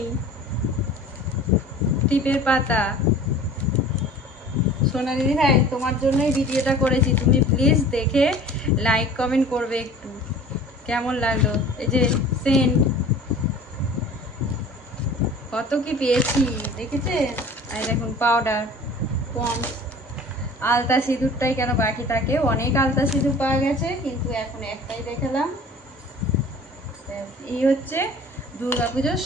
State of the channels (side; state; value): both; normal; correlation 0.44